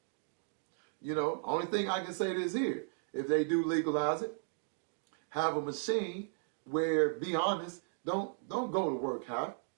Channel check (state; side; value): silent; left; digital silence